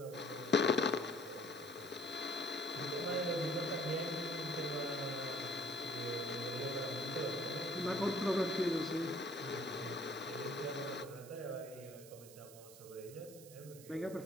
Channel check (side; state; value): right; noise; hiss, 17 dB below the sound